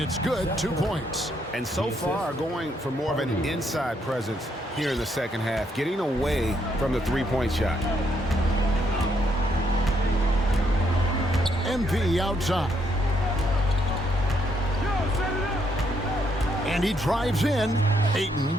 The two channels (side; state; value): both; normal; correlation 0.74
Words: good, 2 points. And so far, going for more of an inside presence here in the second half, getting away from the three-point shot. MP outside. And he drives in.